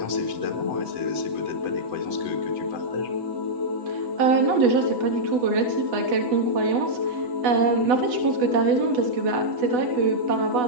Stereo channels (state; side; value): late; left; 8.1 ms